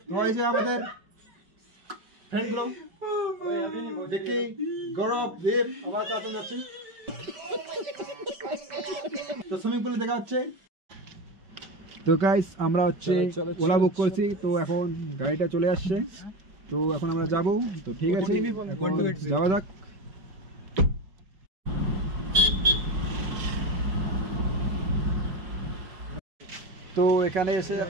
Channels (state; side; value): late; left; 5.2 ms